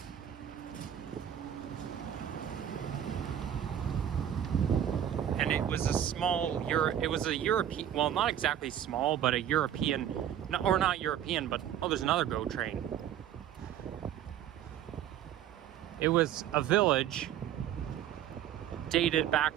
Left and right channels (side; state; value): left; quieter; 10.4 dB